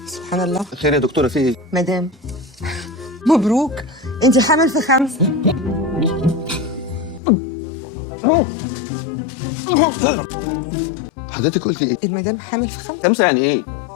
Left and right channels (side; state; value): right; drops out; at 7.2 s